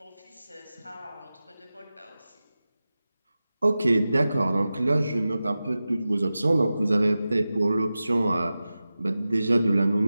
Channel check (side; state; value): both; inverted; correlation -0.94